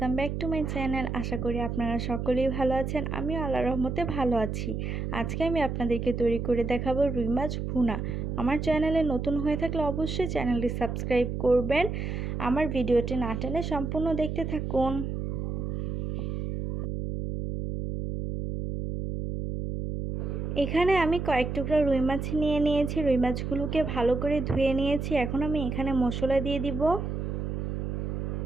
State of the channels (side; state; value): right; noise; hum, 3 dB below the sound